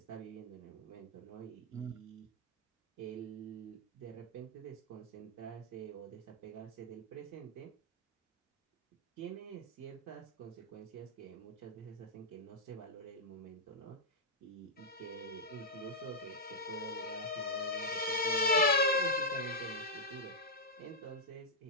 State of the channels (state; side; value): normal; both; correlation -0.07